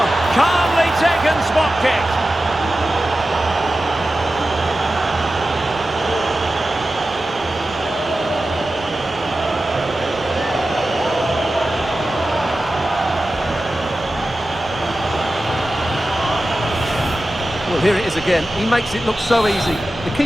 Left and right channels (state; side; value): noise; right; hum, 27 dB below the sound